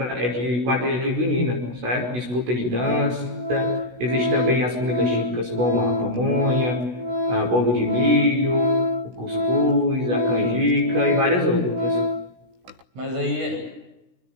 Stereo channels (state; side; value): late; left; 16 ms